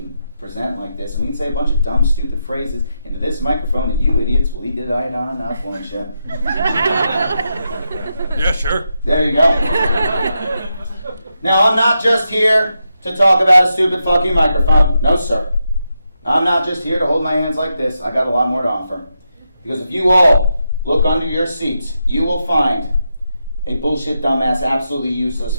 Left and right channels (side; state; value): both; inverted; correlation -0.85